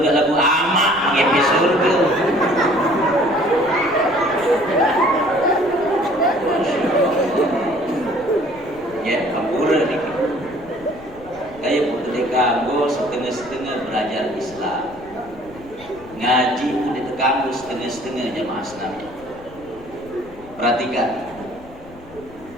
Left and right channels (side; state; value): left; noise; rumble, 21 dB below the sound